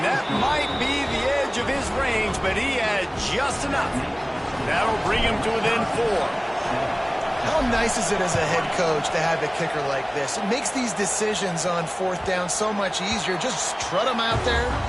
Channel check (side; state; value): both; identical; correlation 1.00